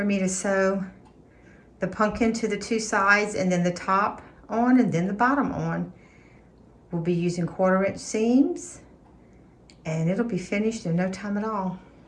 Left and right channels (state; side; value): identical; both; correlation 1.00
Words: me to sew the pumpkin to the 2 sides, and then the top on and then the bottom on. We'll be using 1/4-inch seams, and it'll be finished in no time at all.